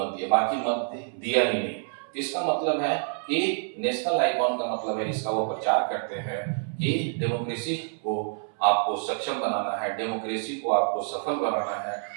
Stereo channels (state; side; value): silent; left; 60 dB below the other